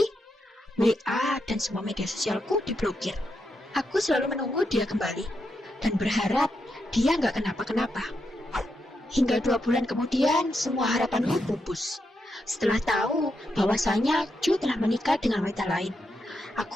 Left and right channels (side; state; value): both; normal; correlation 0.84